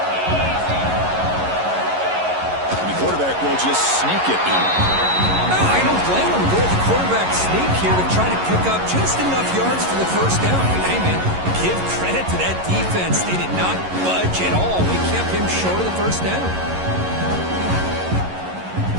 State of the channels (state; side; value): late; left; 11 ms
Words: And the quarterback will just sneak it in. No, I don't blame him. Go with the quarterback sneak here to try to pick up just enough yards for the first down. And hey, man, give credit to that defense. They did not budge at all. They kept him short of the first down.